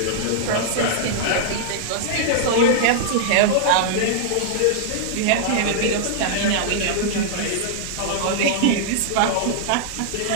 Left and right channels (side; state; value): both; different; correlation -0.01